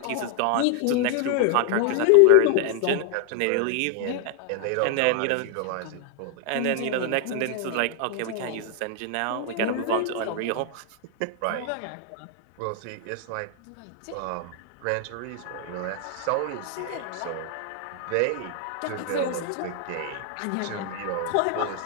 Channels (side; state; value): both; different; correlation 0.00